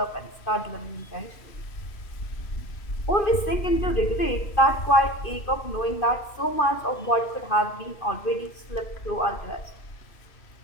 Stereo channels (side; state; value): right; late; 2.5 ms